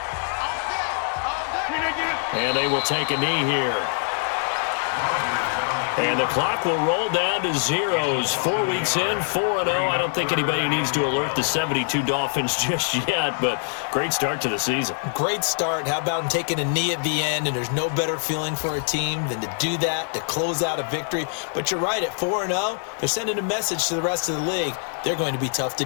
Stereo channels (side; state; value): right; silent; 61 dB below the other